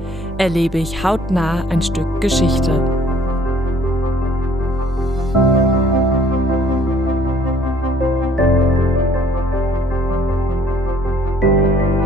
erlebe ich hautnah ein Stück Geschichte.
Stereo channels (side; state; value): both; normal; correlation 0.59